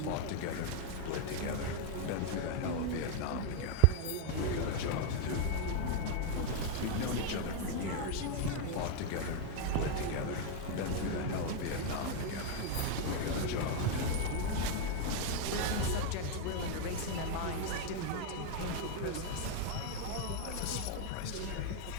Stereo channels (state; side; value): different; both; correlation 0.01